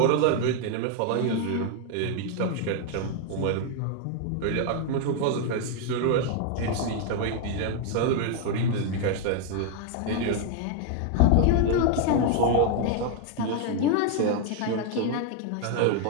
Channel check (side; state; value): both; different; correlation 0.01